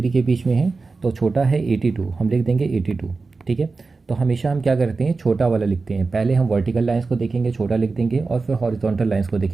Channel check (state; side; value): quieter; left; 4.0 dB